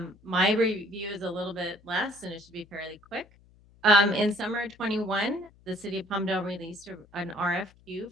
My review is a little bit less and it should be fairly quick. In summer 21, the City of Palmdale released an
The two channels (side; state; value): left; noise; hum, 28 dB below the sound